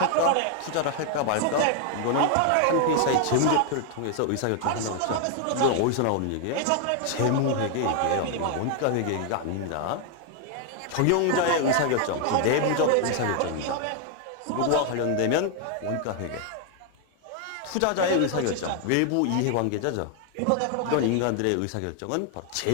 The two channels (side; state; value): both; different; correlation 0.00